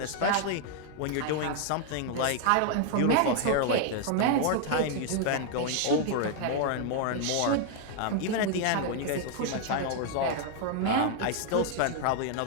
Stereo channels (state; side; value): different; both; correlation 0.00